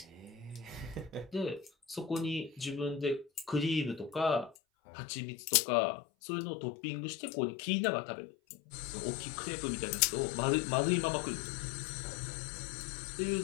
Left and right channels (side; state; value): right; drops out; at 4.5 s